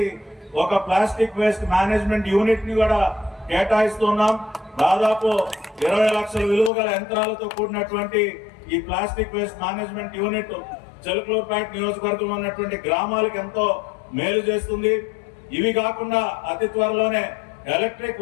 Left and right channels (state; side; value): drops out; right; at 6.7 s